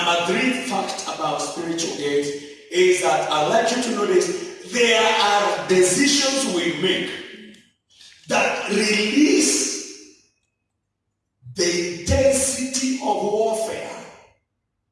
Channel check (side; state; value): both; identical; correlation 1.00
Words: three fact about spiritual gates is that I'd like you to notice there are decisions we make that release the intensity of warfare